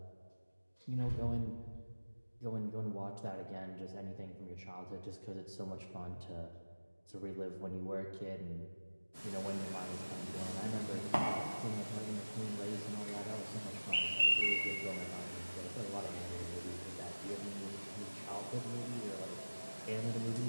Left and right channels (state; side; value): inverted; both; correlation -1.00